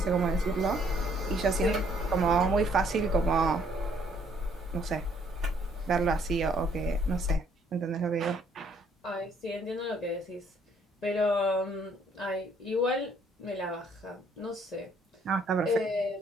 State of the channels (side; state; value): both; normal; correlation 0.65